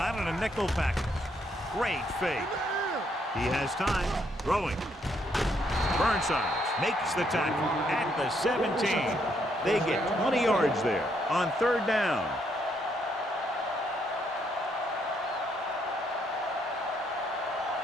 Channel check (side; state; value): both; normal; correlation 0.73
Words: in a nickel package. Great fake. He has time. Throwing. Burnside makes the tackle at the 17. They get 20 yards there on third down.